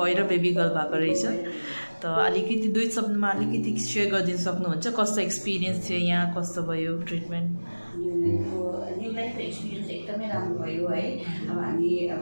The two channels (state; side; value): inverted; both; correlation -1.00